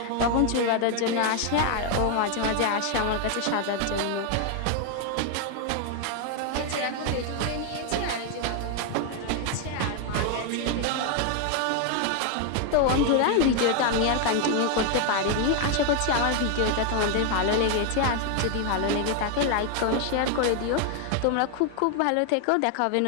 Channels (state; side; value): different; both; correlation 0.01